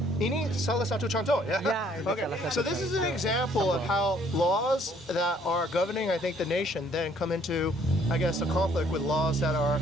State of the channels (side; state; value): both; normal; correlation 0.62